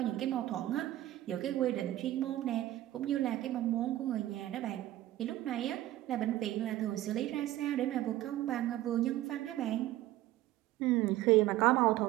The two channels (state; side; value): quieter; left; 14.9 dB